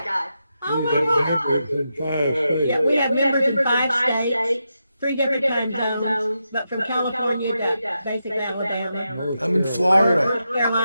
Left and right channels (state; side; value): inverted; both; correlation -0.86